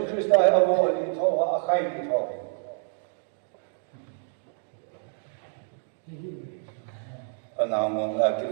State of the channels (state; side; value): silent; left; 60 dB below the other